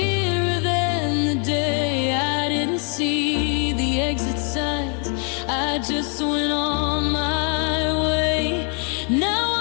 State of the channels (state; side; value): quieter; right; 39.9 dB